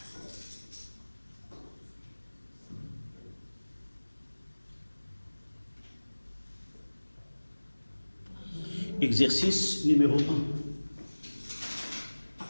Exercice numéro 1.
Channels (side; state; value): both; inverted; correlation -1.00